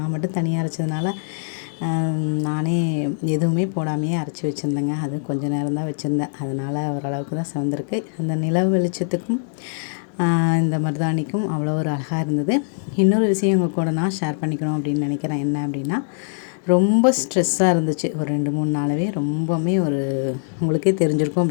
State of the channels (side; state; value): right; silent; digital silence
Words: மட்டும் தனியாக அரைச்சதுனால நானே எதுவுமே போடாமையே அரைச்சி வச்சுருந்தேங்க. அது கொஞ்சம் நேரம் தான் வச்சுருந்தேன். அதனால் ஓரளவுக்கு தான் சிவந்திருக்கு. அந்த நிலவு வெளிச்சத்துக்கும் இந்த மருதாணிக்கும் அவ்வளோ ஒரு அழகாக இருந்தது. இன்னொரு விஷயம் உங்கள் கூட நான் ஷேர் பண்ணிக்கணும் அப்படின்னு நினைக்கிறேன். என்ன அப்படின்னா, ரொம்ப ஸ்ட்ரெஸ்ஸாக இருந்துச்சு ஒரு 2-3 நாளாகவே. ரொம்பவுமே உங்களுக்கே தெரிஞ்சிருக்கும்